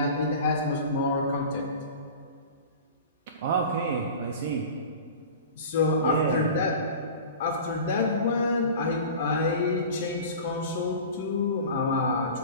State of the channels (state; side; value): inverted; both; correlation -0.37